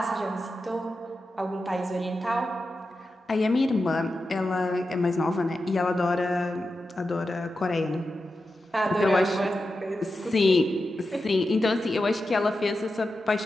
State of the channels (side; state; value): both; normal; correlation 0.91